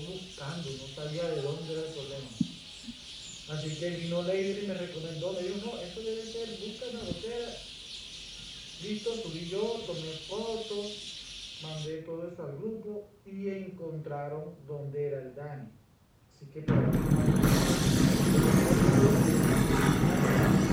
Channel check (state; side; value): identical; both; correlation 1.00